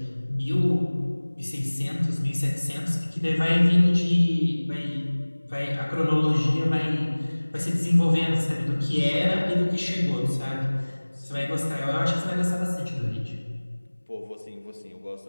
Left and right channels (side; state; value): both; inverted; correlation -1.00